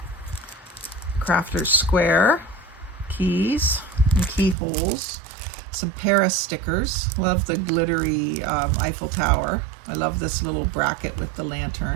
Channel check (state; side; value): drops out; left; at 4.5 s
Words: Crafter's Square, keys and keyholes, some Paris stickers. Love the glittery Eiffel Tower. I love this little bracket with the